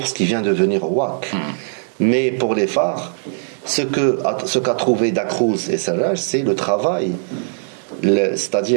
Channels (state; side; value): silent; left; digital silence